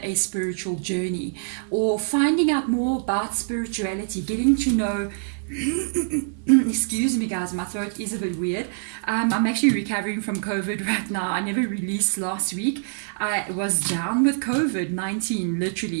a spiritual journey, or finding out more about spirituality, getting to know excuse me guys, my throat is a bit weird. I'm actually recovering from COVID right now. I never released last week. I was down with COVID-19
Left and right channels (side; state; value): left; silent; digital silence